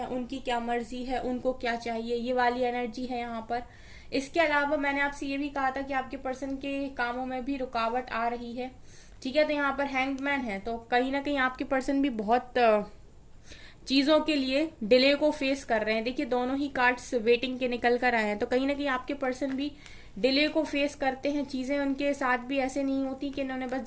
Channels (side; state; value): both; identical; correlation 1.00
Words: उनकी क्या मर्जी है, उनको क्या चाहिए, ये वाली एनर्जी है यहाँ पर। इसके अलावा मैंने आपसे ये भी कहा था कि आपके पर्सन के कामों में भी रुकावट आ रही है, ठीक है। तो यहाँ पर हैंग्ड मैन है, तो कहीं ना कहीं आपके पर्सन भी बहुत चीजों के लिए डिले को फेस कर रहे हैं। देखिए दोनों ही कार्ड्स वेटिंग के निकल कर आए हैं, तो कहीं ना कहीं आपके पर्सन भी डिले को फेस करते हैं। चीजें उनके साथ भी ऐसे नहीं होती कि इन्होंने बस